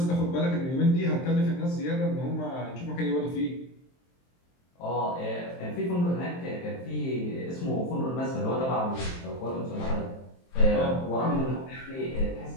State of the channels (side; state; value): right; late; 23 ms